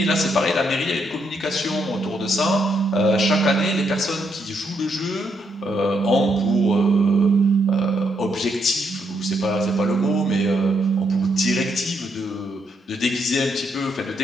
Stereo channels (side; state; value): both; normal; correlation 0.77